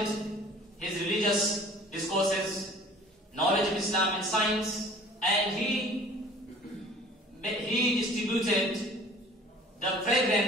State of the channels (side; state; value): both; normal; correlation 0.48